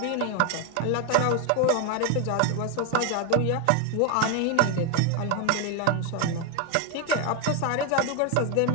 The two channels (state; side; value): different; both; correlation 0.01